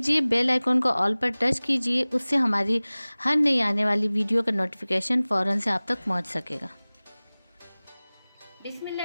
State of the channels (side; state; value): both; inverted; correlation -0.99